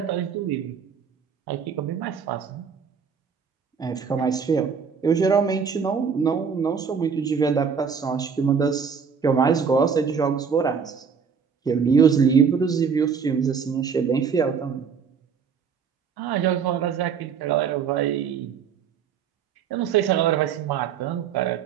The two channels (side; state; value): left; quieter; 6.4 dB